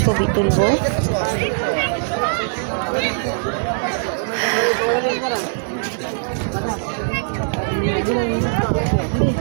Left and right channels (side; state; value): left; silent; digital silence